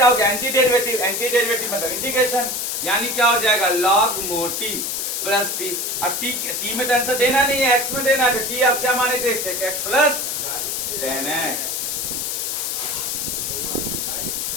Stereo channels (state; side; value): noise; left; hiss, 2 dB below the sound